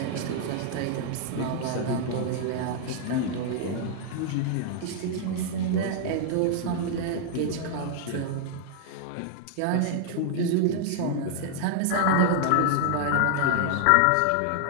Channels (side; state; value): both; different; correlation -0.01